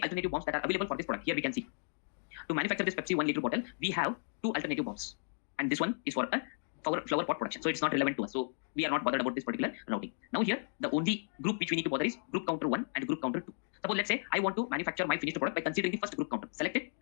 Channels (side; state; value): right; silent; digital silence